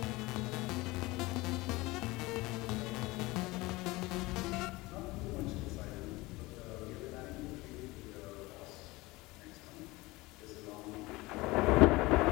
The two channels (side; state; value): right; quieter; 21.5 dB